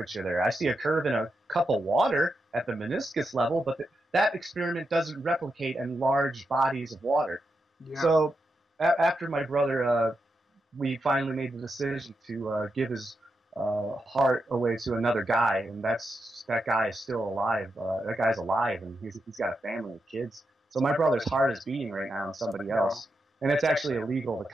there. I see a curve in a cup of water at the meniscus level, but that experiment doesn't replicate in large bodies of water. Yeah. So after my brother, we finally made the decision to give his heart away to another guy, and that guy is still alive. That guy's alive, and he's got a family and kids. So my brother's heart is beating right now on somebody else, and it's actually illegal to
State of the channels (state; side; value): normal; both; correlation 0.86